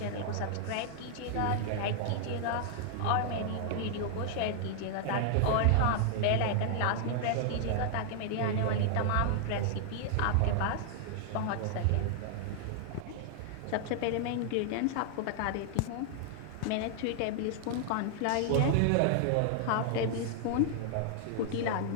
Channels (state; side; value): different; both; correlation 0.00